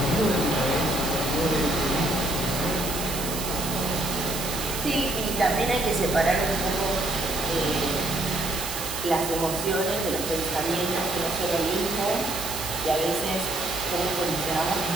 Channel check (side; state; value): right; noise; hiss, 6 dB below the sound